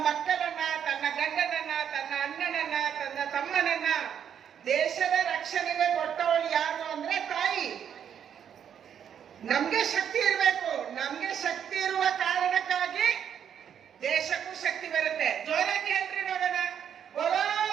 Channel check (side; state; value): left; quieter; 8.6 dB